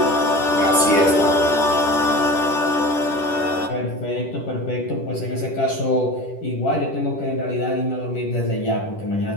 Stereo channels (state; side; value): late; right; 10 ms